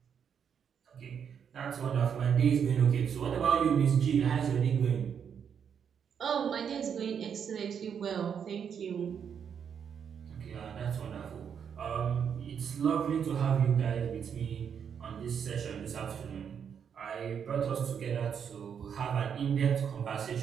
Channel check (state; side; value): quieter; left; 7.6 dB